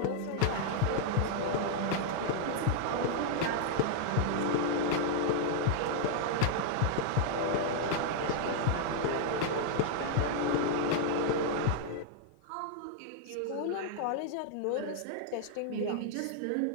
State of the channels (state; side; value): different; both; correlation 0.00